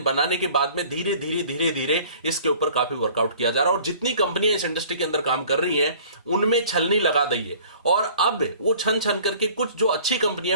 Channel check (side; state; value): both; inverted; correlation -0.49